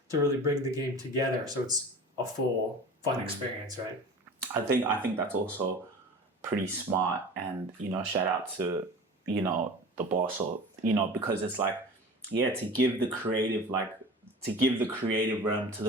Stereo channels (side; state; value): both; normal; correlation 0.37